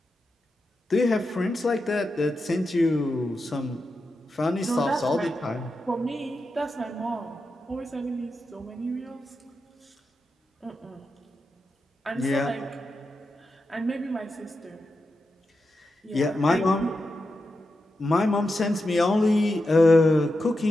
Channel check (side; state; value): both; normal; correlation 0.89